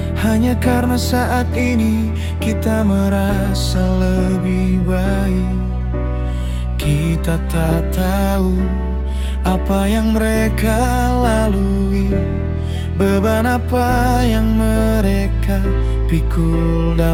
hanya karena saat ini kita merasa lebih baik. Kita tak tahu apa yang mereka lalui, beban apa yang mereka pikul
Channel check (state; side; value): identical; both; correlation 1.00